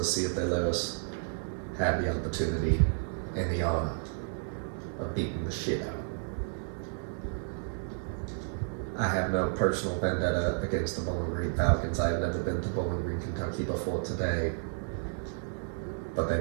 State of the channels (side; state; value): left; silent; 56 dB below the other